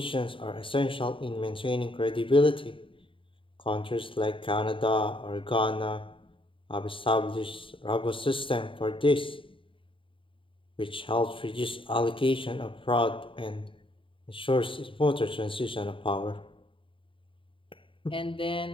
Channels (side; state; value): right; late; 0.25 ms